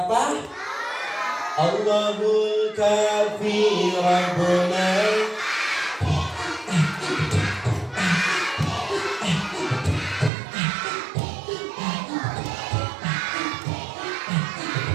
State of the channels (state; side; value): drops out; left; at 10.3 s